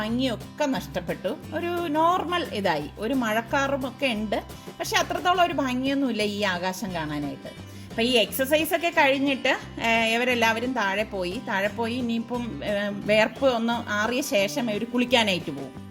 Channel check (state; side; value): identical; both; correlation 1.00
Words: ഒക്കെ നഷ്ടപ്പെട്ടു. ഒരു നോർമൽ ഇതായി. ഒരു മഴക്കാറും ഒക്കെ ഉണ്ട്, പക്ഷെ അത്രത്തോളം ഒരു ഭംഗിയൊന്നുമില്ല ഈ ആകാശം കാണാനായിട്ട്. അപ്പം ഈ എക്സസൈസൊക്കെ കഴിഞ്ഞിട്ട് ഇവരെല്ലാവരും താഴെ പോയി ഇനിയിപ്പം വേർപ്പ് ഒന്ന് ആറിയ ശേഷം ഇവർ കുളിക്കാനായിട്ട് പോകും.